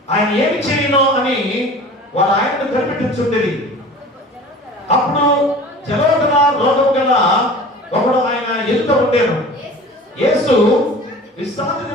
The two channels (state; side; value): normal; both; correlation 0.41